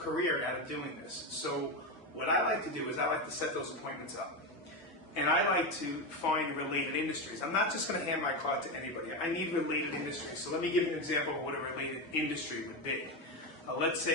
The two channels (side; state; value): both; normal; correlation 0.14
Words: out of doing this. So what I like to do is I like to set those appointments up. And I like to find related industries. I'm not just going to hand my card to anybody. I need related industries. So let me give you an example of what a related industry would be. Let's